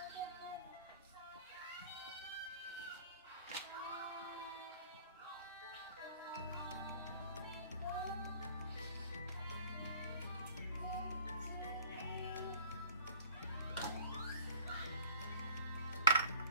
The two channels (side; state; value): both; inverted; correlation -0.51